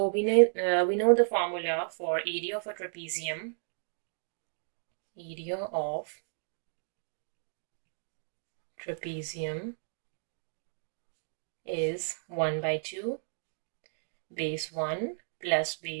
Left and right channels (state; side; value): silent; left; digital silence